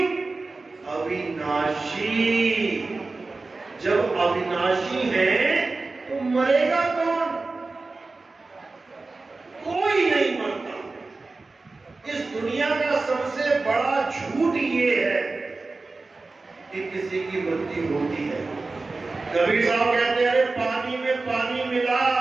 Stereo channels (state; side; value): quieter; left; 3.6 dB